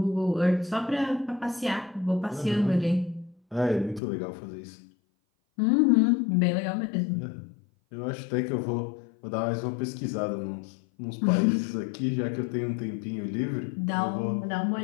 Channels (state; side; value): drops out; right; at 4.0 s